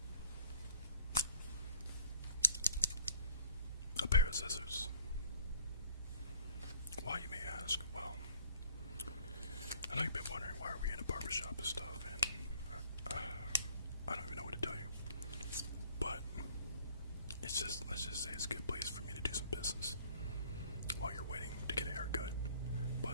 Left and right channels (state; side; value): inverted; both; correlation -0.53